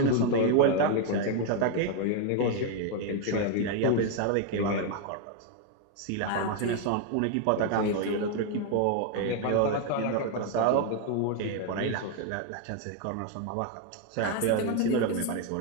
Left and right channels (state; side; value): different; both; correlation 0.00